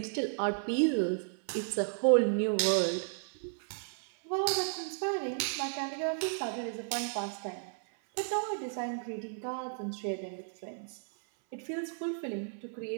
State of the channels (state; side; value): silent; left; 55 dB below the other